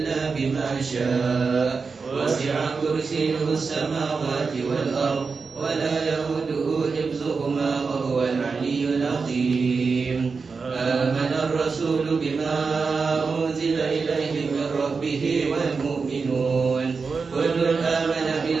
بما شاء. وسع كرسيه السماوات والأرض ولا يؤوده حفظهما وهو العلي العظيم. آمن الرسول بما أنزل إليه من ربه والمؤمنون كل آمن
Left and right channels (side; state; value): left; quieter; 4.8 dB